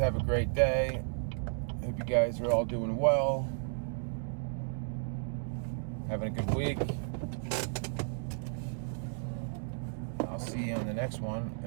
a great day. Hope you guys are all doing well, having a good week. I'll see you on the next one,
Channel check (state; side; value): silent; left; digital silence